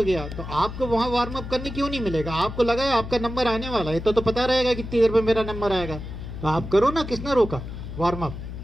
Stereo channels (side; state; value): left; noise; hum, 9 dB below the sound